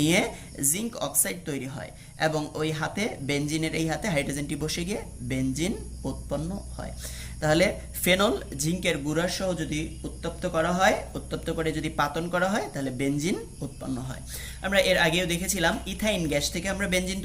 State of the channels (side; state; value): both; identical; correlation 1.00